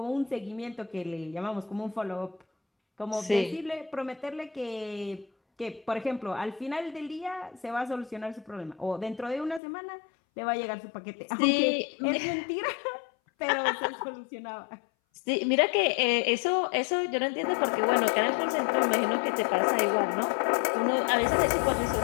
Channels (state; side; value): drops out; right; at 9.6 s